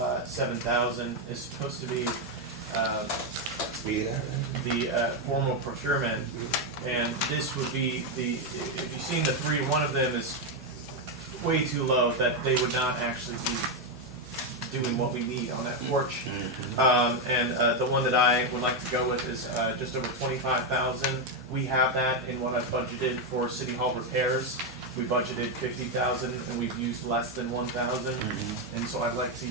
7,000 is supposed to be the formal procurement, and this would be if you've seen the 3, one of them is way too low, that they would not actually be doing what we need on that porch. And the one that I would like to go with is just over 25,000. We have that in what I've budgeted for City Hall repairs. We budgeted 50,000 and we've used less than 1,000. And so I'd like to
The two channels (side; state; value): both; normal; correlation 0.05